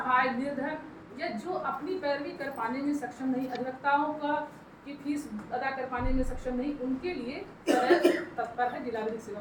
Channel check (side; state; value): both; identical; correlation 1.00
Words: निर्धन या जो अपनी पैरवी कर पाने में सक्षम नहीं, अधिवक्ताओं का की फीस अदा कर पाने में सक्षम नहीं, उनके लिए तत्पर है जिला विधिक